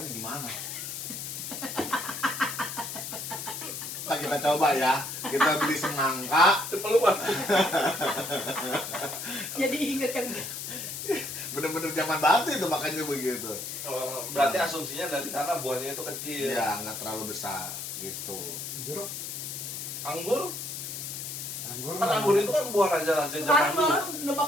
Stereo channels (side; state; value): left; noise; hiss, 6 dB below the sound